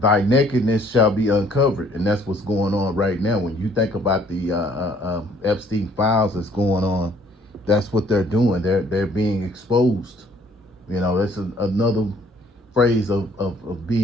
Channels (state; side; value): normal; both; correlation 0.60